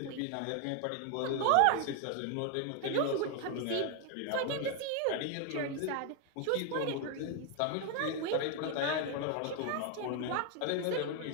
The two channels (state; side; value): different; both; correlation 0.01